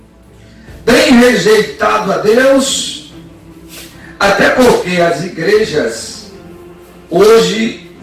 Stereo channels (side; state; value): both; identical; correlation 1.00